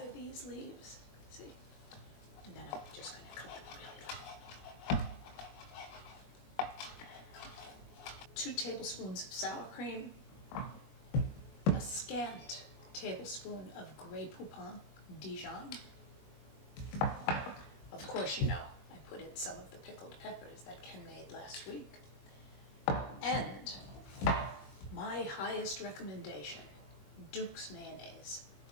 these leaves, see? And then I'm just going to cut them really light. 2 tablespoons of sour cream, a scant tablespoon of gray Poupon Dijon. Of course, you know, I put in some of the pickled peppers that Ken made last week. And my highest recommendation, Duke's mayonnaise.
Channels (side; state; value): right; late; 21 ms